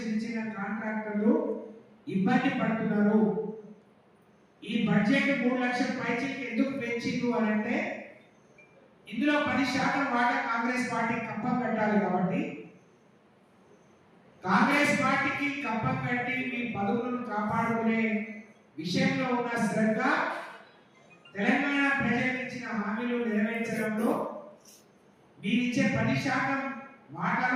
చిన్న చిన్న కాంట్రాక్టర్లు ఇబ్బంది పడుతున్నారు. ఈ బడ్జెట్ 3 లక్షల పైచీకి ఎందుకు పెంచిండు అని అంటే ఇందులో 10% వాటా కాంగ్రెస్ పార్టీ కప్పం కట్టాలి. కాబట్టి కాంగ్రెస్ పార్టీకి కప్పం కట్టి మీ పదవులను కాపాడుకునే విషయంలో ఉన్న శ్రద్ధ, తెలంగాణ ప్రజలకు ఇచ్చిన హామీలు నెరవేర్చడంలో మీరిచ్చే 10%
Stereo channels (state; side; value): identical; both; correlation 1.00